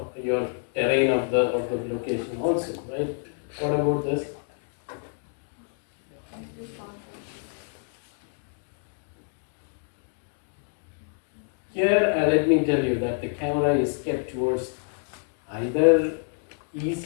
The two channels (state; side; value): silent; right; 60 dB below the other